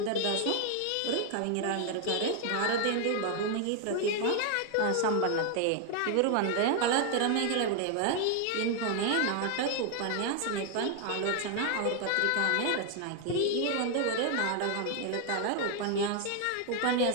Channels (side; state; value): both; different; correlation 0.00